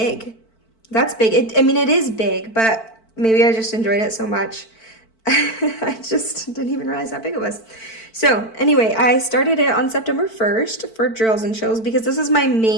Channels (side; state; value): right; late; 4.5 ms